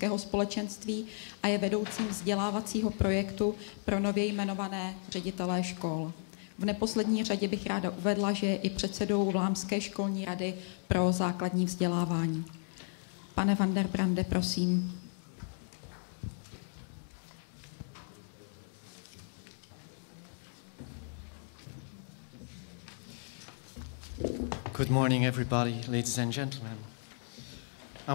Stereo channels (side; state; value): right; silent; 55 dB below the other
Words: společenství a je vedoucím vzdělávacího projektu pro nově jmenované ředitelé škol. V neposlední řadě bych ráda uvedla, že je i předsedou Vlámské školní rady pro základní vzdělávání. Pane van den Brande, prosím. Good morning, everybody, ladies and gentlemen. I